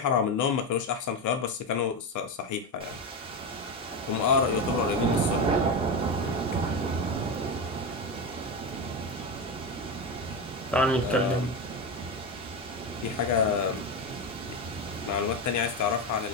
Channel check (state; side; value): normal; both; correlation 0.16